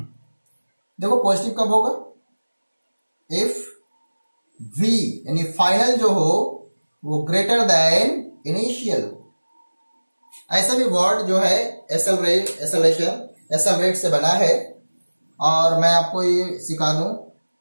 देखो पॉजिटिव कब होगा, इफ v यानी फाइनल जो हो वो ग्रेटर देन इनिशियल हो। ऐसा भी वर्ड जो है एक्सेलरेट से बना है, और मैं आपको ये सिखा दूं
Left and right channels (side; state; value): both; inverted; correlation -1.00